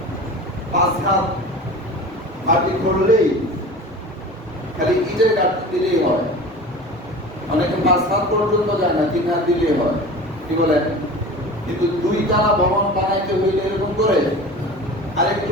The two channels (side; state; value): both; normal; correlation 0.36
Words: 5 হাত মাটি করলেই, খালি ইটের গাঁথনি দিলেই হয়। অনেকে 5 হাত পর্যন্ত যায় না, 3 হাত দিলেই হয়। কি বলেন? কিন্তু 2 তলা ভবন বানাইতে হইলে এরকম করে আরেকটু